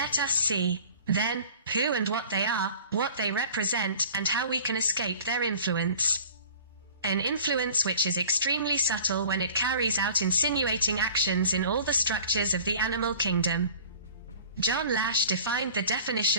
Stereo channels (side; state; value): both; inverted; correlation -0.45